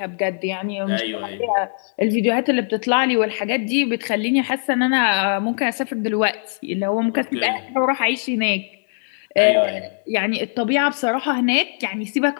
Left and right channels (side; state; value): right; silent; 65 dB below the other